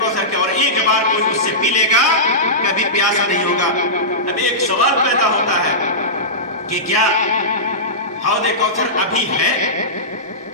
کے، اور ایک بار کوئی اس سے پی لے گا کبھی پیاسا نہیں ہوگا۔ اب ایک سوال پیدا ہوتا ہے کہ کیا حوض کوثر ابھی ہے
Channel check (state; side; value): normal; both; correlation -0.17